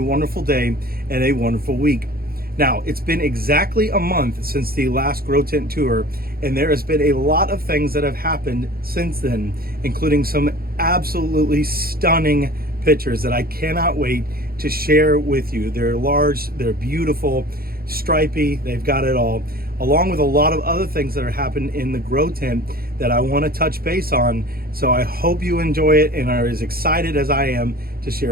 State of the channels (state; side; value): late; left; 0.44 ms